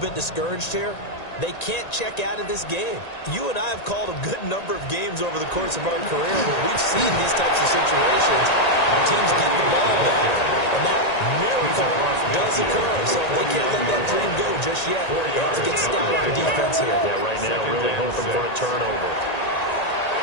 bit discouraged here, they can't check out of this game. You and I have called a good number of games over the course of our career where we've seen these types of situations. Teams get the ball back, and that miracle does occur. So they can't let that dream go just yet. They have to get stout on defense here. Yeah, right now really hoping for a turnover.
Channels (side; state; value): right; late; 1.9 ms